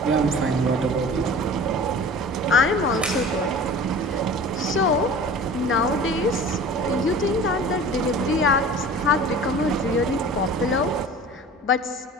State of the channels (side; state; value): both; normal; correlation 0.40